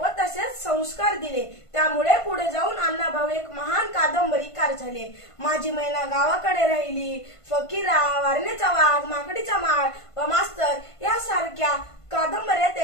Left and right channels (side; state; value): right; late; 1.5 ms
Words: तसेच संस्कार दिले। त्यामुळे पुढे जाऊन अण्णाभाऊ एक महान कादंबरीकार झाले। माझी मैना गावाकडे राहिली, फकीरा, वारणेचा वाघ, माकडीचा माळ व मास्तर यासारख्या कादंबऱ्या